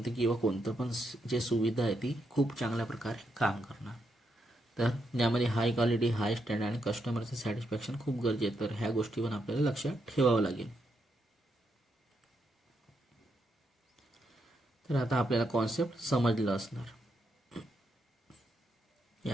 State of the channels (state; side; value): normal; both; correlation 0.80